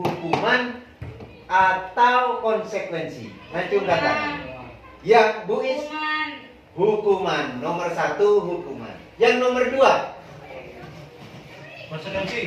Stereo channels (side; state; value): both; identical; correlation 1.00